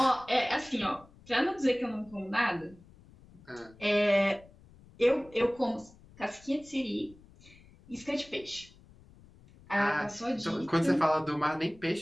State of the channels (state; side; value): noise; left; rumble, 24 dB below the sound